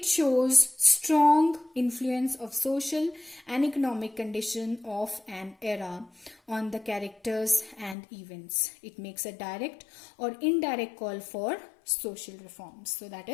shows strong influence of social and economic condition of an era on the characters and events. It makes a direct or indirect call for social reforms. So that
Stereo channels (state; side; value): drops out; right; at 8.0 s